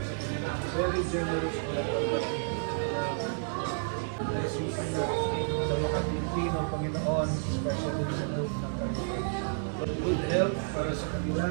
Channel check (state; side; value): silent; left; digital silence